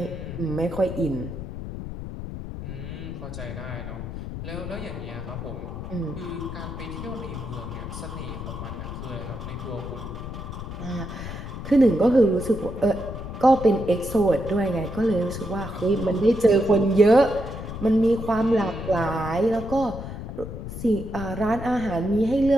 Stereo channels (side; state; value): left; noise; rumble, 8 dB below the sound